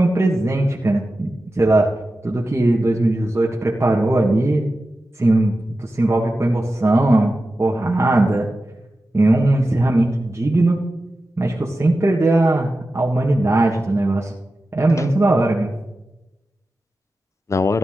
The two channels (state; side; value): normal; both; correlation 0.93